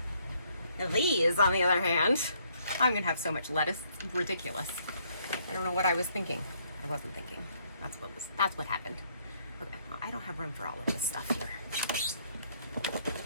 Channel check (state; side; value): inverted; both; correlation -0.68